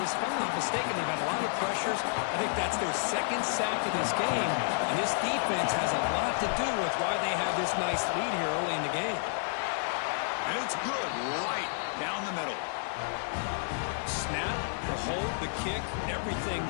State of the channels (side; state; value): right; silent; digital silence